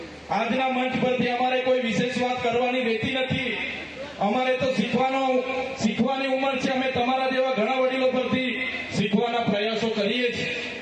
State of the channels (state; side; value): identical; both; correlation 1.00